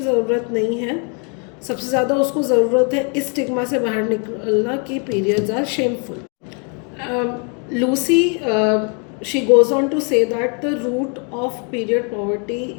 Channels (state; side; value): quieter; right; 37.3 dB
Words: नहीं है, सबसे ज़्यादा उसको ज़रूरत है इस स्टिग्मा से बाहर निकलना कि periods are shameful. Lucy she goes on to say that the root of period poverty